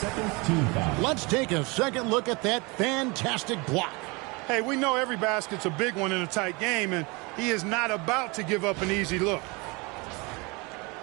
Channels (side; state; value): left; quieter; 27.3 dB